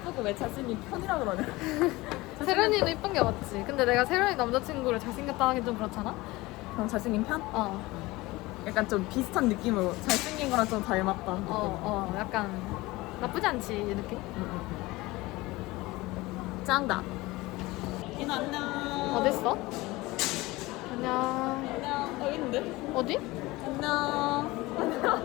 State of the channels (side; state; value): right; quieter; 20.6 dB